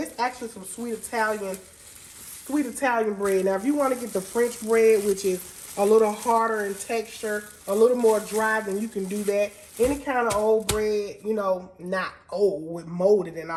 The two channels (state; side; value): identical; both; correlation 1.00